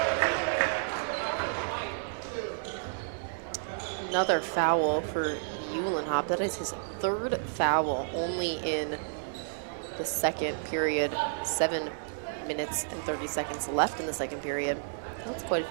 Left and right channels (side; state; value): left; silent; digital silence